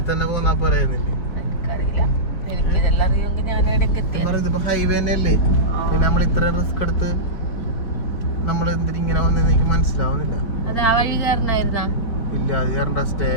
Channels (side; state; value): right; late; 4.4 ms